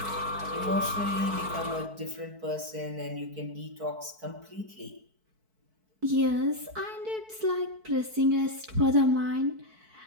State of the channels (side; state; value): left; late; 4.6 ms